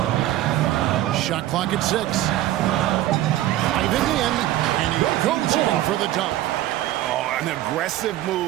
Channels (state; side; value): quieter; left; 14.2 dB